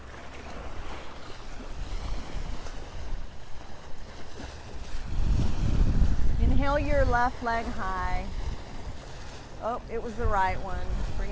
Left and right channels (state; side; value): identical; both; correlation 1.00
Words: Inhale your left leg high. Oh, it was the right one. Bring